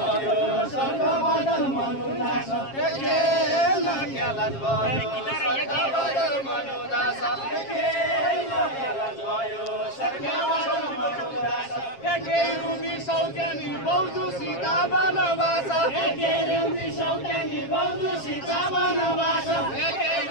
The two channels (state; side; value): late; right; 7.4 ms